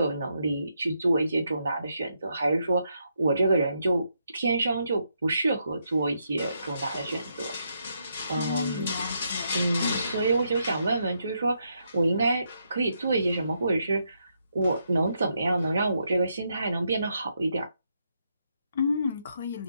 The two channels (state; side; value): inverted; both; correlation -0.79